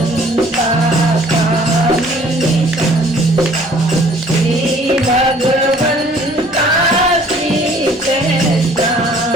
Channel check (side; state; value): both; normal; correlation 0.56